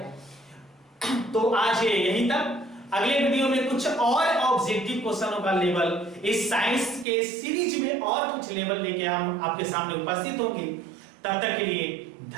तो आज यहीं तक, अगले वीडियो में कुछ और ऑब्जेक्टिव क्वेश्चनों का लेवल इस साइंस के सीरीज में और कुछ लेवल लेके हम आपके सामने उपस्थित होंगे। तब तक के लिए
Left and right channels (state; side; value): drops out; left; at 7.1 s